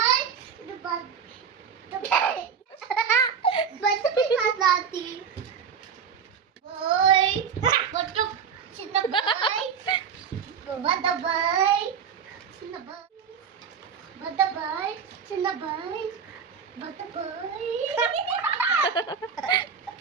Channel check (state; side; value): quieter; left; 6.9 dB